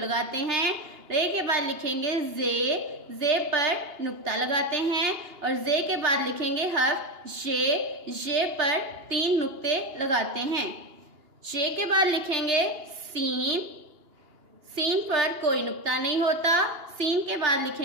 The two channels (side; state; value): left; late; 2.8 ms